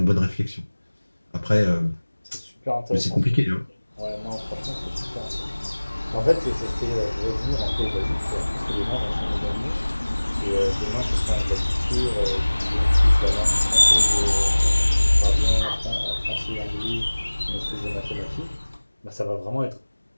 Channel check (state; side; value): inverted; both; correlation -1.00